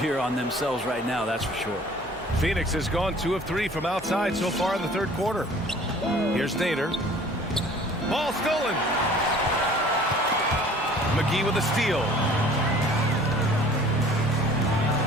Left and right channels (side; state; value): both; normal; correlation 0.50